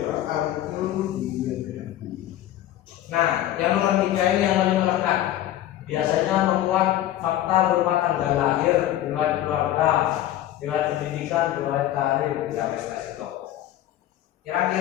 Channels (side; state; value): right; quieter; 13.2 dB